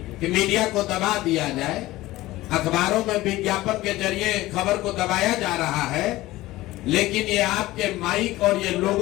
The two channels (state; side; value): quieter; right; 17.6 dB